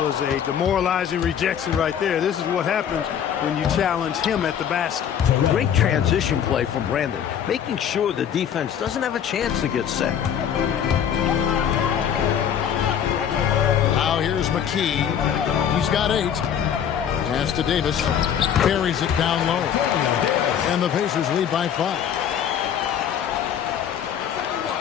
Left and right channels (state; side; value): quieter; right; 8.8 dB